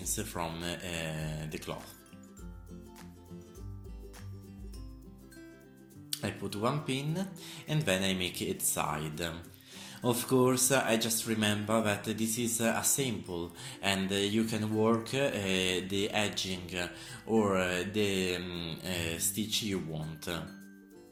from the cloth. I put one pin and then I make it side. Of course, I just remember that this is a sample and you can work the edging or the stitch you want.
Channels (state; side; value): identical; both; correlation 1.00